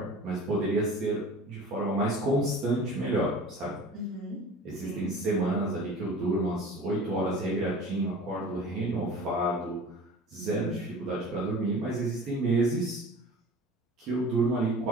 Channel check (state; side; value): normal; both; correlation 0.41